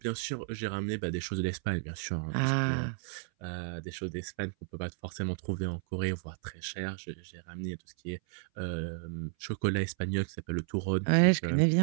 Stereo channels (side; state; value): left; silent; 56 dB below the other